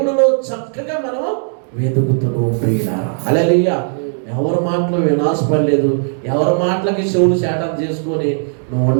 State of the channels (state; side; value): silent; left; digital silence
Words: చక్కగా మనం వెతుకుతున్నాం ప్రియులారా. హల్లెలూయా. ఎవరి మాటలు వినాశపడలేదు, ఎవరి మాటలకి చెవులు శాటం చేసుకొని నువ్వు